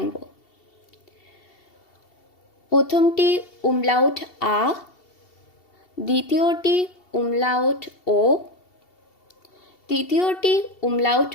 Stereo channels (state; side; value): late; right; 2.7 ms